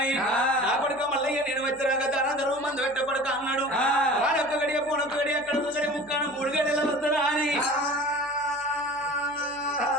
నా కొడుకు మల్లయ్య నేను వచ్చాక దాన ధర్మ మందు పెట్ట కొడుకు అన్నాడు వాడొక్క గడియ పోనొక్క గడియ అక్కడ గడి ముక్కాను 3 గడియలు వస్తానా అని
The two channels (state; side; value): noise; right; hum, 27 dB below the sound